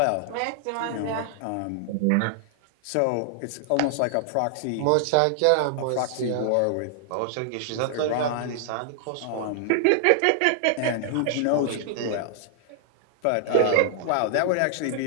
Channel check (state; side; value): different; both; correlation 0.00